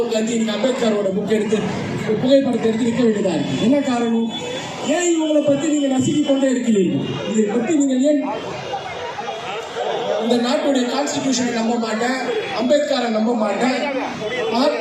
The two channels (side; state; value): both; identical; correlation 1.00